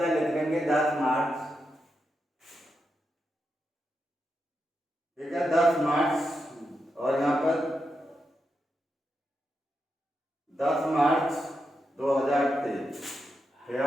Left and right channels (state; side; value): normal; both; correlation 0.86